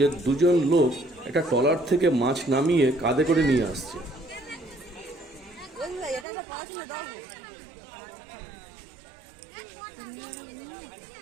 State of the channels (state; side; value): drops out; left; at 6.2 s